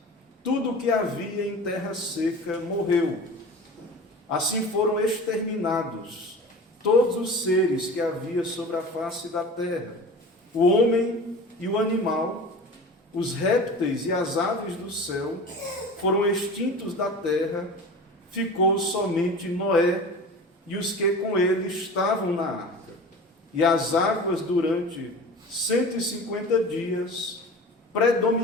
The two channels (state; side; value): normal; both; correlation 0.36